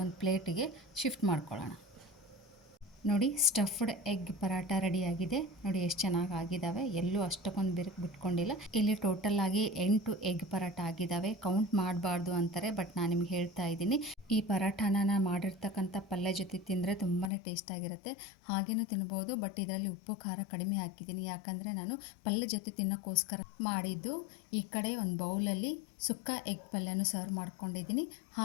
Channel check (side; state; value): right; drops out; at 17.3 s